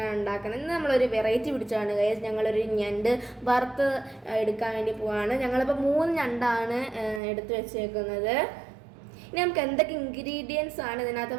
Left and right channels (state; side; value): drops out; left; at 7.2 s